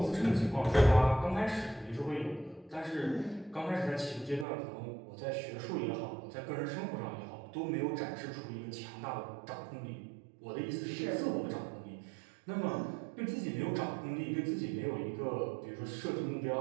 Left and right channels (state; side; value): drops out; left; at 4.5 s